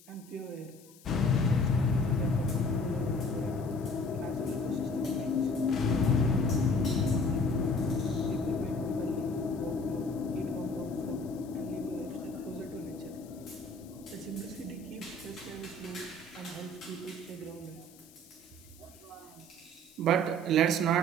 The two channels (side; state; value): left; noise; hiss, 24 dB below the sound